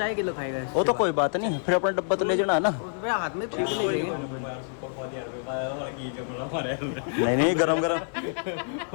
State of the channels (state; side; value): silent; right; 59 dB below the other